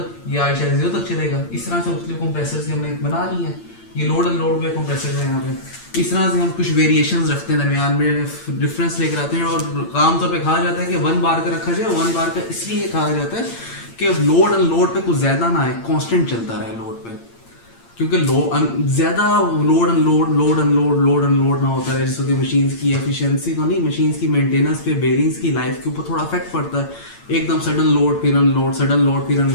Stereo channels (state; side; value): late; right; 8.8 ms